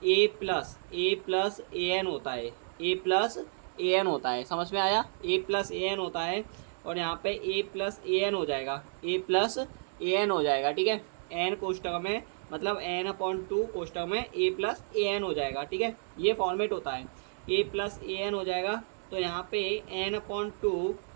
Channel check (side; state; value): left; silent; 57 dB below the other